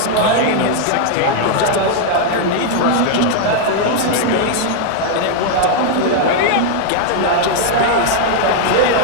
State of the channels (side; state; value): both; different; correlation 0.00